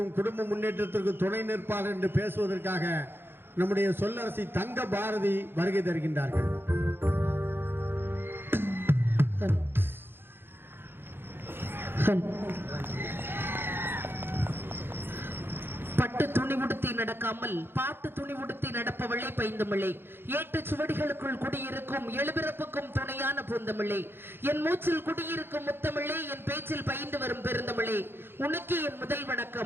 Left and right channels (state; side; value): late; left; 0.10 ms